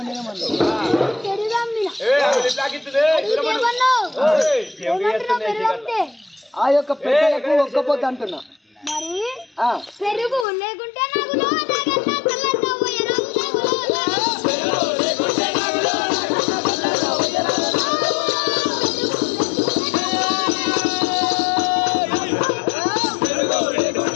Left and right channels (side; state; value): right; drops out; at 10.5 s